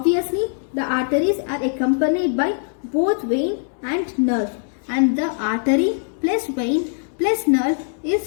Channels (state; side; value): silent; right; digital silence